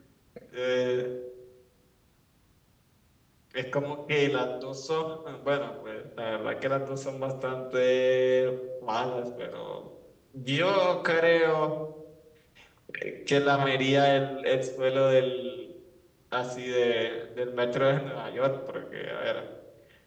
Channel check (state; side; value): identical; both; correlation 1.00